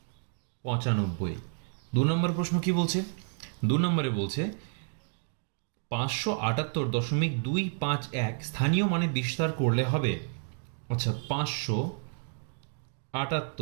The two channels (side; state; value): left; silent; 57 dB below the other